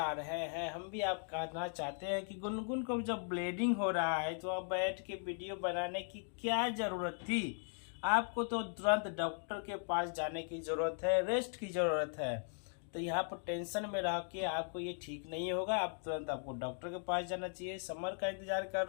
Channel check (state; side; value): silent; right; 52 dB below the other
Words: रहे हैं, हम भी आप कहना चाहते हैं कि गुनगुन को जब ब्लीडिंग हो रहा है तो आप बैठ के वीडियो बनाने की क्या जरूरत थी? आपको तो तुरंत डॉक्टर के पास जाने की जरूरत है, रेस्ट की जरूरत है। तो यहाँ पर टेंशन में रह के आपको ये ठीक नहीं होगा, आप तुरंत आपको डॉक्टर के पास जाना चाहिए। समर का इंतजार कर